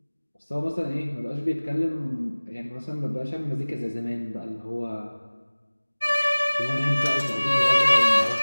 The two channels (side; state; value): both; inverted; correlation -1.00